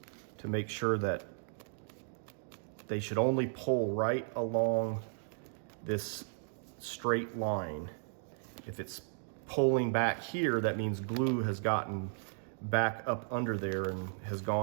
to make sure that they should only pull right along this straight line. If it's pulling back here, that means glue has gotten back up under there and has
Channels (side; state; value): left; silent; digital silence